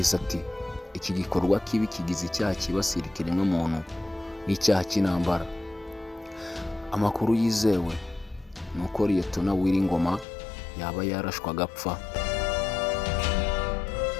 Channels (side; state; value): right; drops out; at 10.2 s